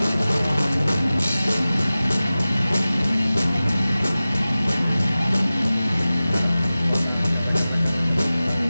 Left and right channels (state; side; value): inverted; both; correlation -0.96